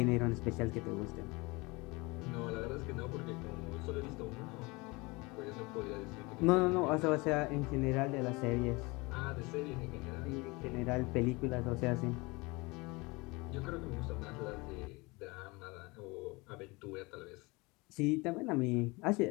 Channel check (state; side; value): quieter; right; 25.1 dB